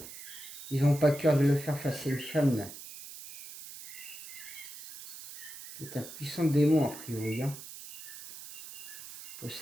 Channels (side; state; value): right; noise; hiss, 13 dB below the sound